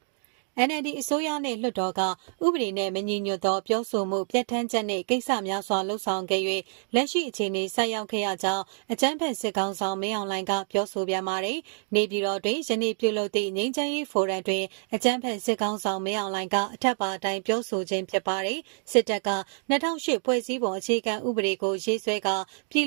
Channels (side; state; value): left; silent; 55 dB below the other